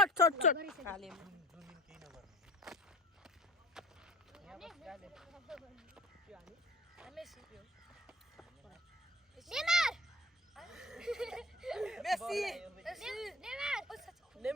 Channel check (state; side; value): normal; both; correlation 0.42